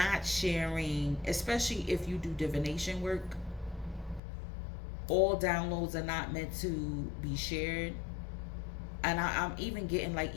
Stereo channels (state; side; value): drops out; right; at 4.2 s